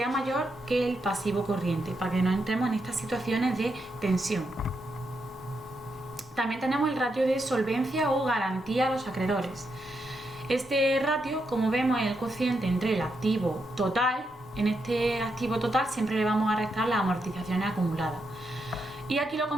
mayor que el pasivo corriente, para que no entremos en estas situaciones de tensión. También tenemos el ratio de solvencia o garantía a los acreedores. Este ratio, como vemos, es el cociente entre el activo total. En este activo total siempre le vamos a restar las amortizaciones acumuladas. Y aquí lo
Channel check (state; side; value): normal; both; correlation 0.82